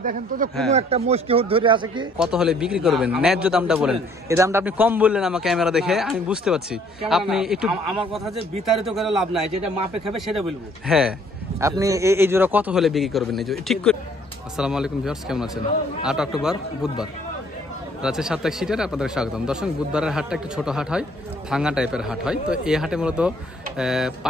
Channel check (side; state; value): both; normal; correlation 0.61